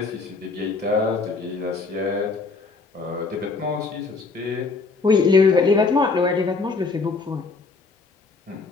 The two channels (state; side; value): quieter; right; 4.1 dB